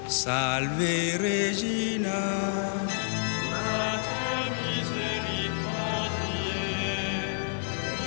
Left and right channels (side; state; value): right; silent; digital silence